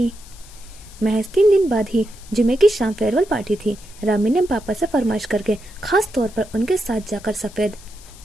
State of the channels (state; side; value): noise; left; hiss, 21 dB below the sound